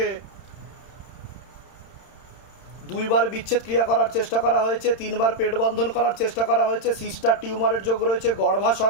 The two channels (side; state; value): right; late; 31 ms